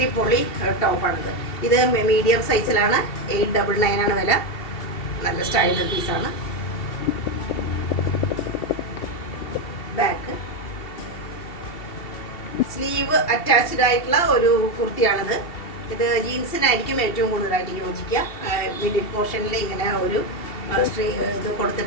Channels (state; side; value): late; right; 2.7 ms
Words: ടോപ്പാണിത്. ഇത് മീഡിയം സൈസിലാണ്, 899 ആണ് വില. നല്ല സ്റ്റൈലർ പീസാണ്. ബാക്ക് സ്ലീവ് അറ്റാച്ച്ഡ് ആയിട്ടുള്ള ഒരു കുർത്തിയാണിത്. ഇത് ജീൻസിനായിരിക്കും ഏറ്റവും കൂടുതലായിട്ട് യോജിക്കുക. മിഡിൽ പോർഷനിൽ ഇങ്ങനെ ഒരു ഇത്